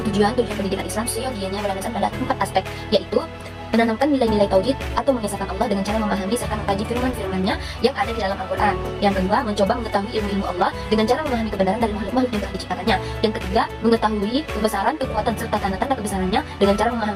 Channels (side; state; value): both; identical; correlation 1.00